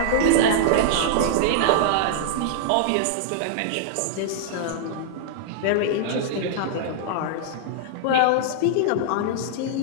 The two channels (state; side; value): different; both; correlation -0.01